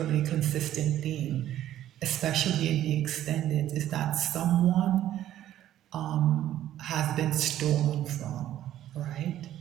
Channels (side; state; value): left; quieter; 12.4 dB